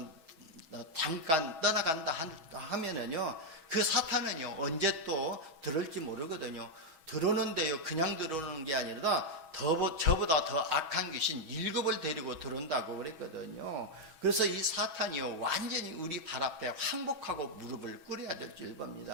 잠깐 떠나간다 하면은요, 그 사탄은요 언제 또 들을지 모르거든요. 들어오는데요, 그냥 들어오는 게 아니라 저보다 더 악한 귀신 7을 데리고 들어온다고 그랬거든요. 그래서 이 사탄이요 완전히 우리 발 앞에 항복하고 무릎을 꿇어야 될 줄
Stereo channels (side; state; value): left; late; 6.2 ms